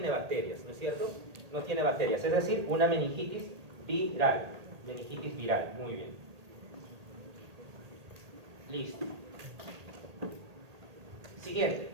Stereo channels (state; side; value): late; left; 1.8 ms